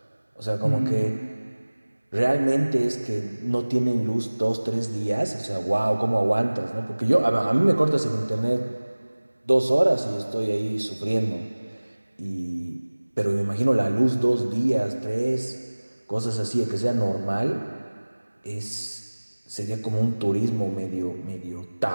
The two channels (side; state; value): both; inverted; correlation -1.00